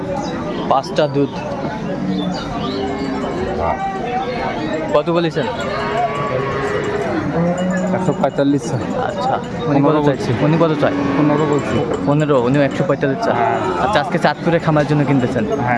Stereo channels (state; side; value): identical; both; correlation 1.00